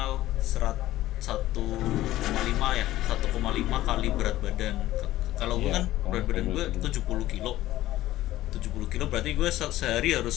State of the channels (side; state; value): right; quieter; 15.2 dB